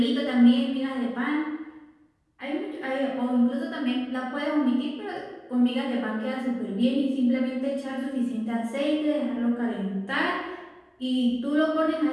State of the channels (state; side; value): identical; both; correlation 1.00